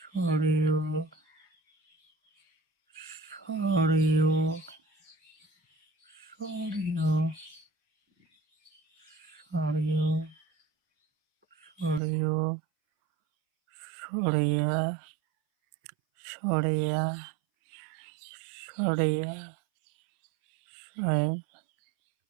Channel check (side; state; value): left; drops out; at 12.0 s